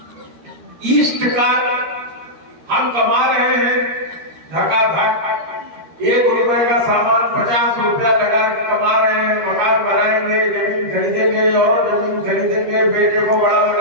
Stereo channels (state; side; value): late; left; 13 ms